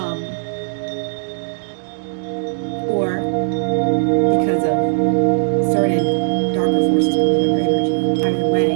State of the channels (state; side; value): silent; left; digital silence